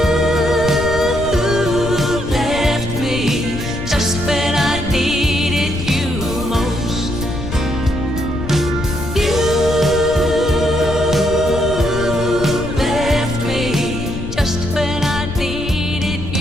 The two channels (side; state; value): left; noise; rumble, 7 dB below the sound